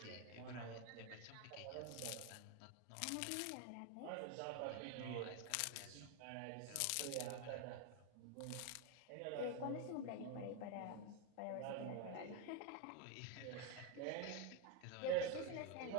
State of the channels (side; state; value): both; different; correlation 0.02